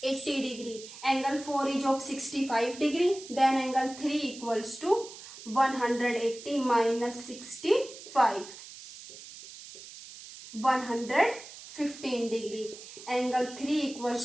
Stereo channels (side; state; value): right; noise; hiss, 15 dB below the sound